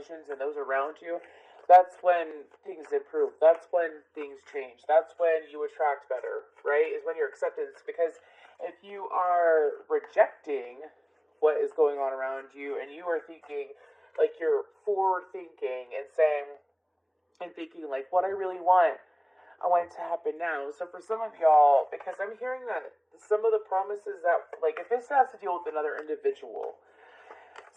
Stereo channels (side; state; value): both; identical; correlation 1.00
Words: and those around you, that's when things improve. That's when things change. That's when you attract better, right? Is when your acceptance. Because if you are rejecting what is going on around you and you are thinking, like you're forward thinking and saying, and thinking like, what I really want, I want it to happen now. So for some of y'all, because I'm hearing that some of the promises that, like, if this has to deal with another individual,